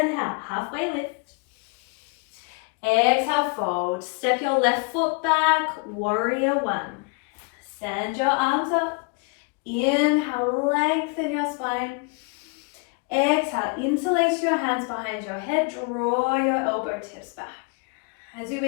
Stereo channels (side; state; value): right; quieter; 33.0 dB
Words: halfway lift. Exhale, fold. Step your left foot back, warrior one. Send your arms up. Inhale, lengthen your spine. Exhale, interlace your hands behind your head. Draw your elbow tips back. As you